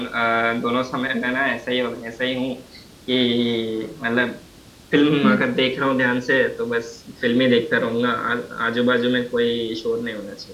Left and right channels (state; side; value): identical; both; correlation 1.00